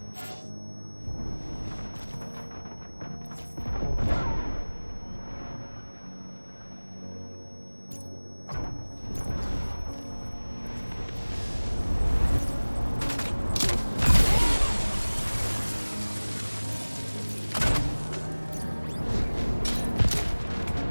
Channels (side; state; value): both; inverted; correlation -1.00